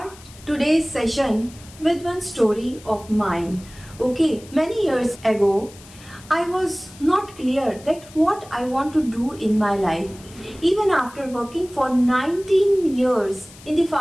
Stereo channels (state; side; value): noise; left; hiss, 21 dB below the sound